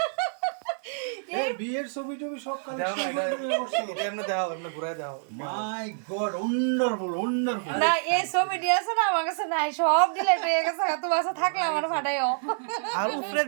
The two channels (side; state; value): left; silent; digital silence